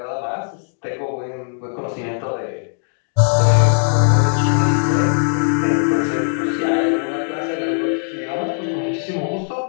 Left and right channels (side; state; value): right; silent; digital silence